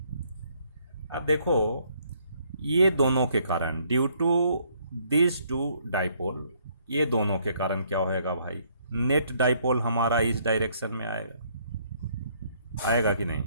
अब देखो ये दोनों के कारण, due to this two dipole, ये दोनों के कारण क्या होएगा भाई, नेट डाइपोल हमारा इस डायरेक्शन में आएगा, आएगा कि नहीं।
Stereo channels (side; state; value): both; inverted; correlation -0.67